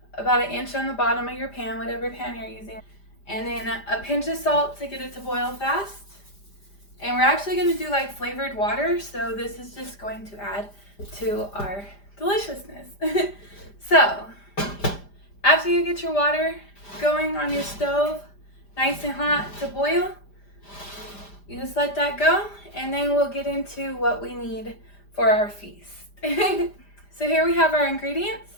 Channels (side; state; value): right; late; 5.0 ms